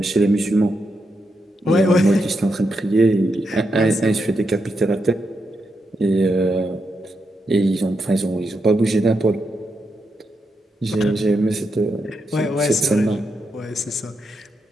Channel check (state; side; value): normal; both; correlation 0.84